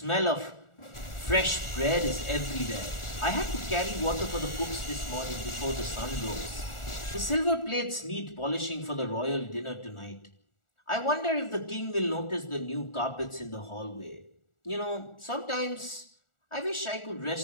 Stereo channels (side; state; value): right; late; 1.4 ms